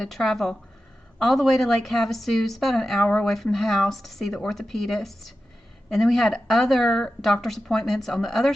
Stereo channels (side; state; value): both; normal; correlation 0.92